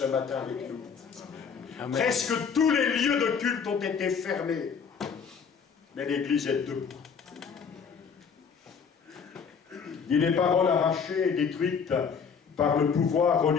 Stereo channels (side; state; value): right; quieter; 6.3 dB